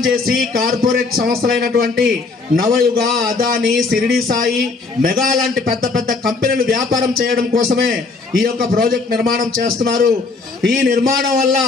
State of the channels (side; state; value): right; quieter; 4.0 dB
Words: చేసి కార్పొరేట్ సంస్థలైనటువంటి నవయుగ, అదాని, సిరిడి సాయి, మెగా లాంటి పెద్ద పెద్ద కంపెనీలు వ్యాపారం చేయడం కోసమే ఈ యొక్క ప్రాజెక్ట్ నిర్మాణం చేస్తున్నారు. ఈ నిర్మాణం వల్ల